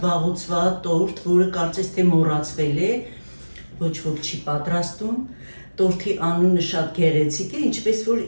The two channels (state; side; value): inverted; both; correlation -1.00